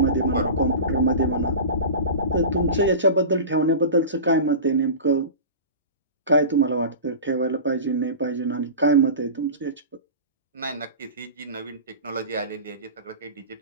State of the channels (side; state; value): both; inverted; correlation -0.32